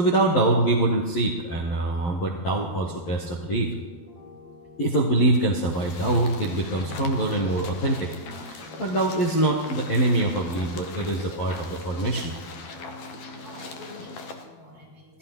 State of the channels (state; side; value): late; right; 12 ms